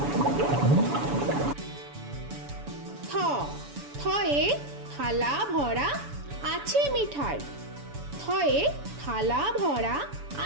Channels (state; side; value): late; left; 7.0 ms